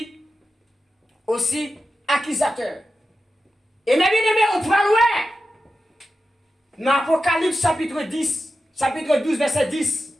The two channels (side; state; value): both; normal; correlation 0.92